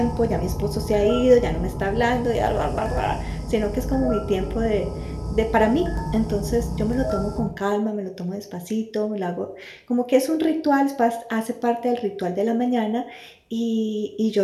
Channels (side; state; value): both; identical; correlation 1.00